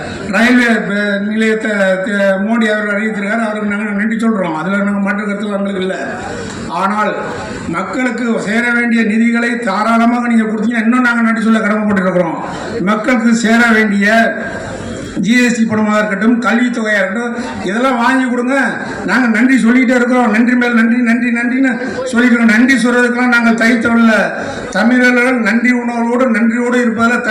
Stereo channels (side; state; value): both; identical; correlation 1.00